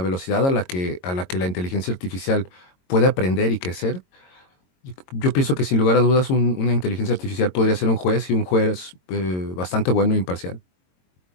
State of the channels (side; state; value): right; late; 22 ms